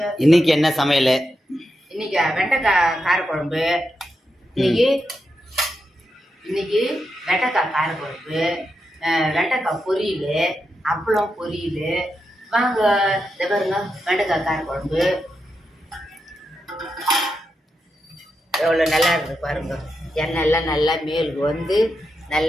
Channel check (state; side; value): normal; both; correlation 0.86